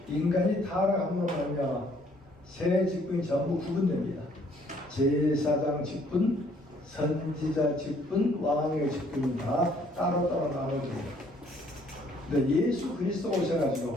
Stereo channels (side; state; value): both; normal; correlation 0.63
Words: 인간이 타락함으로 말미암아 세 직분이 전부 구분됩니다. 제사장 직분, 선지자 직분, 왕의 직분이 다 따로따로 나눠집니다. 근데 예수 그리스도가